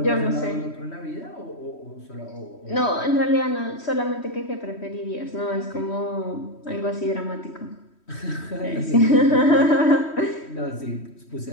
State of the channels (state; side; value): late; right; 3.1 ms